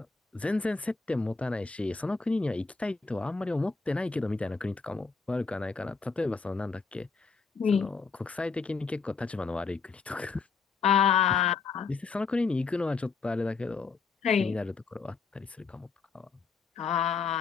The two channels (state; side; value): quieter; right; 4.9 dB